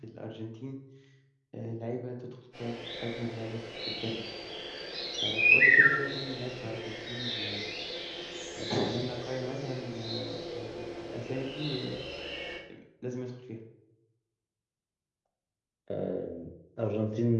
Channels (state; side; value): identical; both; correlation 1.00